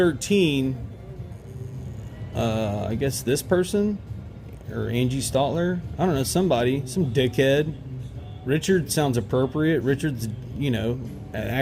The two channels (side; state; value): both; identical; correlation 1.00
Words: I guess this person or Angie Stotler, I don't know, somebody, some dickhead. Richard sounds appropriate. Richard's, you know, an